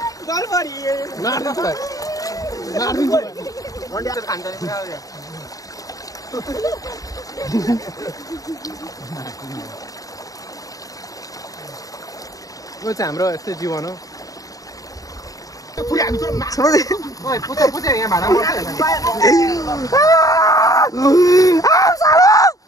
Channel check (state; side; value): late; right; 0.17 ms